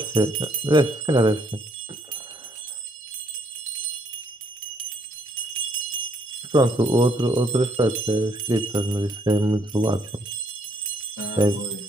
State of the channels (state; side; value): normal; both; correlation 0.69